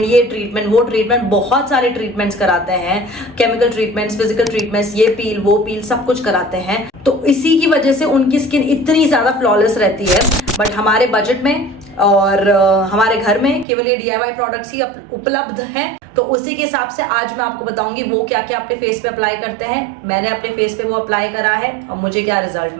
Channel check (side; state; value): left; drops out; at 13.7 s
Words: ये ट्रीटमेंट, वो ट्रीटमेंट, बहुत सारे ट्रीटमेंट्स कराते हैं. केमिकल ट्रीटमेंट्स, फिजिकल ट्रीटमेंट्स, ये पील, वो पील, सब कुछ कराते हैं. तो इसी की वजह से उनकी स्किन इतनी ज्यादा फ्लॉलेस रहती है. बट हमारे बजट में और हमारे घर में केवल ये DIY प्रोडक्ट्स ही उपलब्ध हैं. तो उसी के हिसाब से आज मैं आपको बताऊंगी वो क्या क्या अपने फेस पे अप्लाई करते हैं. मैंने अपने फेस पे वो अप्लाई करा है और मुझे क्या रिजल्ट